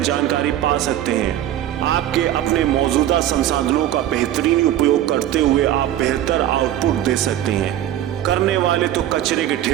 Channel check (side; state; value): left; quieter; 12.3 dB